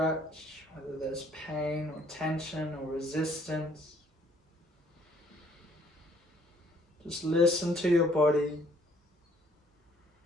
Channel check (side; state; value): both; normal; correlation 0.62